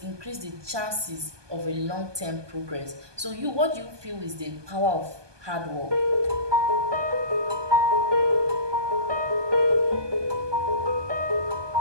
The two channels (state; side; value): late; left; 1.2 ms